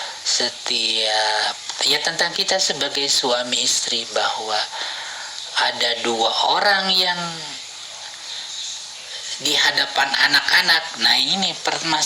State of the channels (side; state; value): both; identical; correlation 1.00